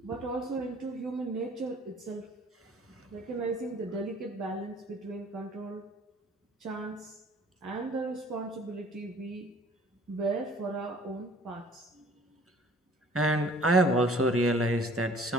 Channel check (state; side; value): normal; both; correlation 0.53